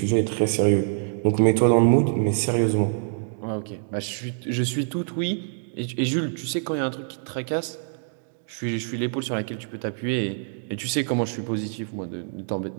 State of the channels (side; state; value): left; silent; digital silence